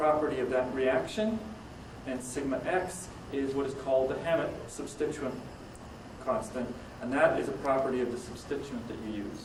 of that reaction, and sigma x is what is called the Hammet substituent constant, and that is a property of the substituent that you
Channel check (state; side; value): identical; both; correlation 1.00